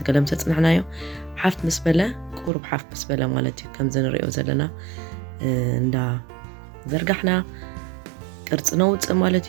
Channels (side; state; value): left; drops out; at 2.5 s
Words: ገለም ተጽናሕናዮ ሓፍት ምስ በለ ቁርብ ሓፍት ምስ በለ ማለት እዩ ከም ዝንሪኦ ዘለና እንዳ ዘርጋሕና ቅርጽ ነውጽእ ማለት